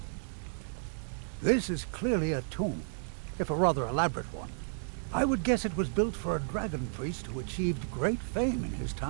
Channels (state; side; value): silent; left; digital silence